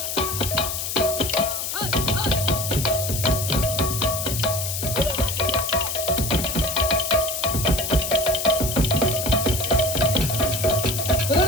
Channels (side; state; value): left; noise; hiss, 3 dB below the sound